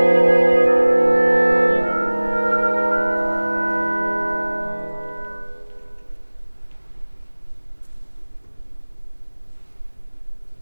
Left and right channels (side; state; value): both; inverted; correlation -1.00